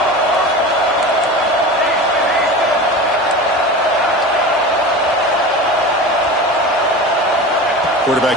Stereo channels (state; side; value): normal; both; correlation 0.31